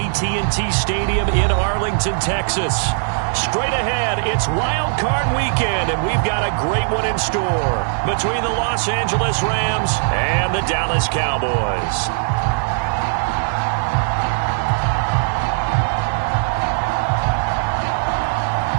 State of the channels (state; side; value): silent; left; digital silence